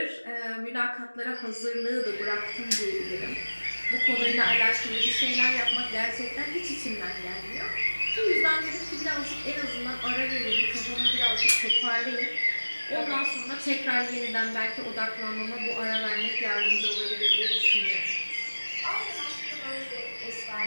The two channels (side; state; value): both; inverted; correlation -1.00